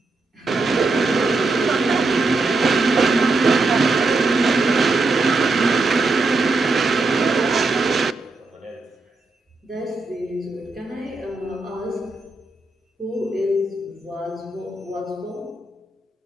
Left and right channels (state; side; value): quieter; left; 3.3 dB